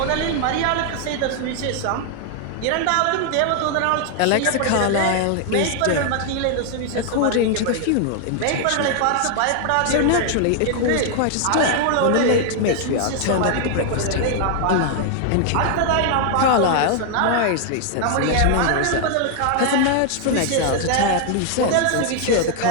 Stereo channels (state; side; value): different; both; correlation 0.00